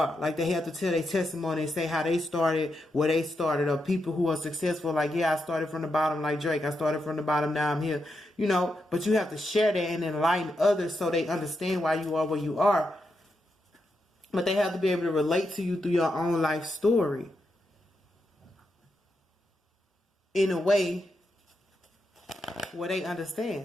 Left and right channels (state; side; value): normal; both; correlation 0.85